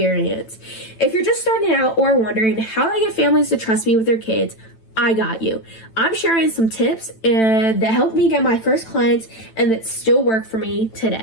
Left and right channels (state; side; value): late; right; 9.0 ms